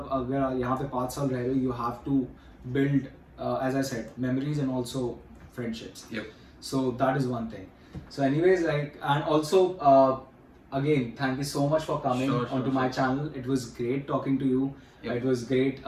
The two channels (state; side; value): identical; both; correlation 1.00